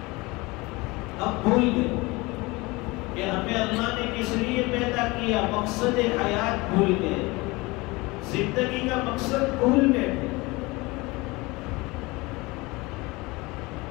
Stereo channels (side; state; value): right; quieter; 23.5 dB